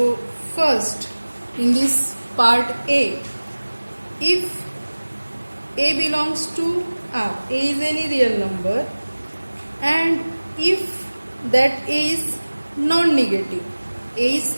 first, in this part A, if A belongs to R, A is any real number, and if that A is non-negative, A is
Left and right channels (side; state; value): both; inverted; correlation -1.00